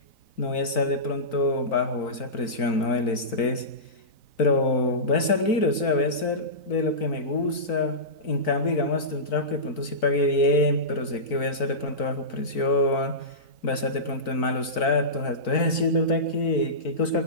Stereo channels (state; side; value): late; right; 4.5 ms